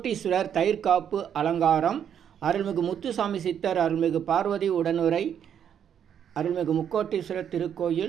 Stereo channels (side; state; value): left; quieter; 8.8 dB